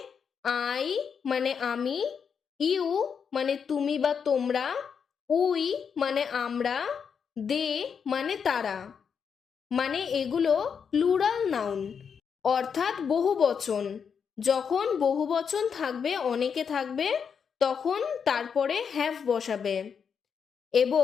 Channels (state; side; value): quieter; right; 6.7 dB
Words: আই মানে আমি, ইউ মানে তুমি বা তোমরা, উই মানে আমরা, দে মানে তারা, মানে এগুলো প্লুরাল নাউন অর্থাৎ বহুবচন। যখন বহুবচন থাকবে, অনেকে থাকবে, তখন তারপরে হ্যাভ বসাবে।